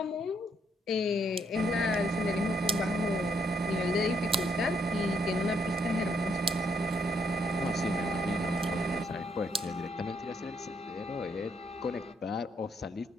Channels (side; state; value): both; normal; correlation 0.73